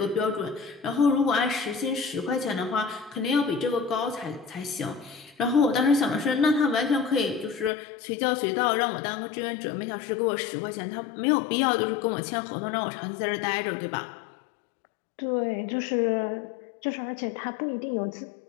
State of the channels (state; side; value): drops out; right; at 7.7 s